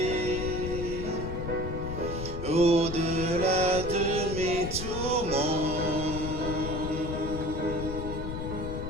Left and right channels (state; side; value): noise; left; rumble, 5 dB below the sound